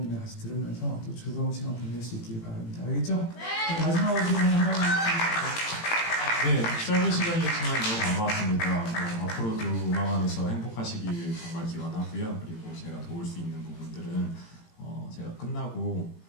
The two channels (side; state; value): right; late; 18 ms